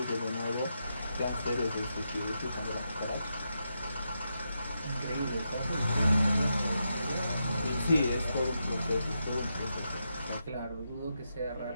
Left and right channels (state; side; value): inverted; both; correlation -0.85